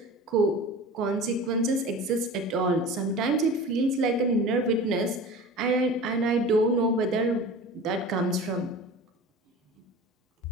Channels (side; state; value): both; normal; correlation 0.37